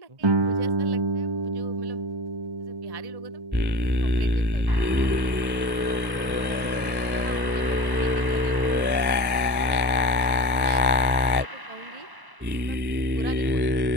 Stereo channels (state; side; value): late; left; 1.1 ms